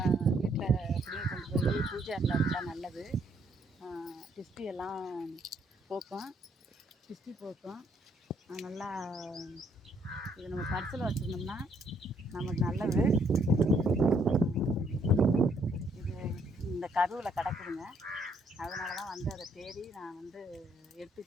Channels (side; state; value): both; normal; correlation 0.69